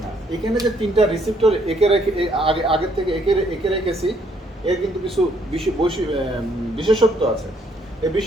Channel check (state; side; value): normal; both; correlation 0.68